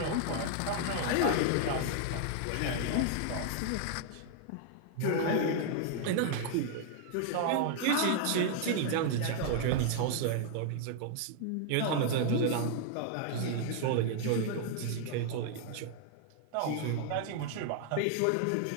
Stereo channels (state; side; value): different; both; correlation 0.00